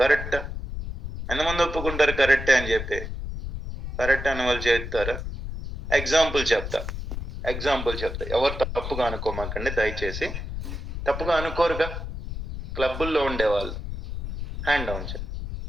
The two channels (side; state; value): left; noise; rumble, 6 dB below the sound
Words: ఎంతమంది ఒప్పుకుంటారు కరెక్టే అని జెప్పి? కరెక్ట్ అన్నవాళ్ళు చేత్తారా? ఎగ్జాంపుల్ చెప్తా. ఎవరు తప్పుగా అనుకోమాకండి దయచేసి. తప్పుగా అనుకోరుగా? క్లబ్బుల్లో ఉండేవాళ్ళు. హ్యాండ్ డౌన్ చేయండి.